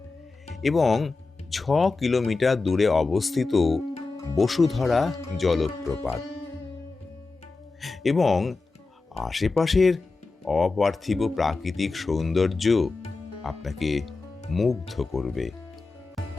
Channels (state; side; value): quieter; right; 3.8 dB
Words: এবং 6 কিলোমিটার দূরে অবস্থিত বসুধারা জলপ্রপাত। এবং আশেপাশের অপার্থিব প্রাকৃতিক সৌন্দর্য আপনাকে মুগ্ধ করবে।